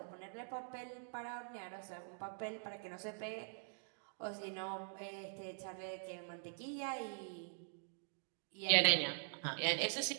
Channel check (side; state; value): left; silent; digital silence